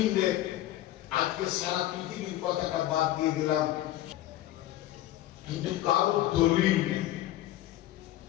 আজকে সারা পৃথিবীর কথাটা বাদ দিয়ে দিলাম, কিন্তু কারো দলিল নেই,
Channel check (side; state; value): right; quieter; 14.5 dB